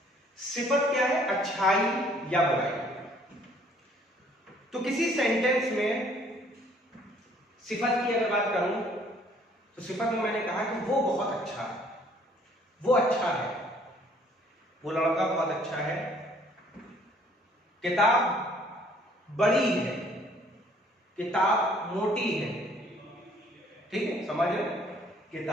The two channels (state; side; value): normal; both; correlation 0.60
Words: सिफत क्या है? अच्छाई या बुराई। तो किसी सेंटेंस में सिफत की अगर बात करूं तो सिफत में मैंने कहा कि वो बहुत अच्छा है, वो अच्छा है, वो लड़का बहुत अच्छा है, किताब बड़ी है, किताब मोटी है, ठीक है, समझ रहे?